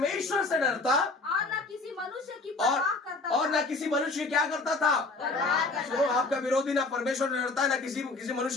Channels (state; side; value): quieter; right; 3.5 dB